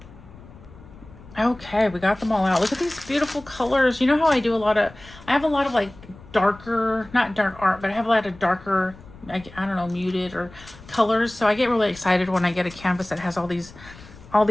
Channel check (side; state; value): left; noise; rumble, 20 dB below the sound